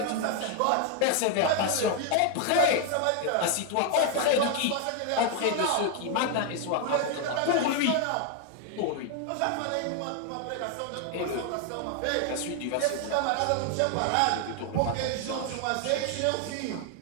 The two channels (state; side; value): different; both; correlation 0.00